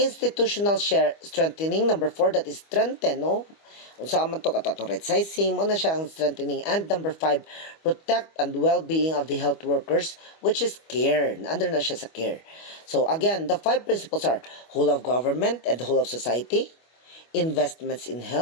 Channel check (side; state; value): right; late; 25 ms